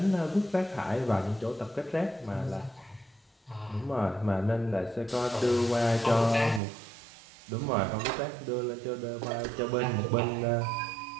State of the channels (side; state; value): left; drops out; at 6.6 s